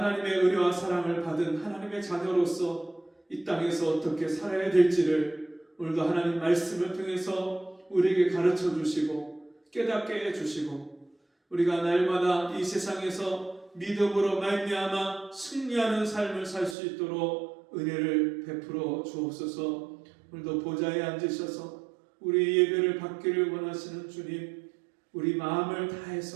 은혜와 사랑을 받은 하나님의 자녀로서 이 땅에서 어떻게 살아야 될지를 오늘도 하나님 말씀을 통해서 우리에게 가르쳐 주시고 깨닫게 해주시고 우리가 날마다 이 세상에서 믿음으로 말미암아 승리하는 삶을 살 수 있도록 은혜를 베풀어 주옵소서. 오늘도 보좌에 앉으셔서 우리 예배를 받기를 원하시는 주님, 우리 마음을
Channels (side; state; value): left; drops out; at 16.8 s